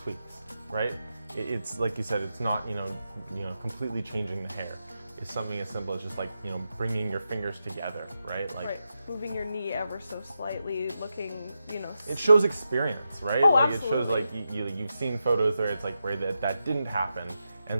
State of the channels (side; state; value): both; inverted; correlation -0.88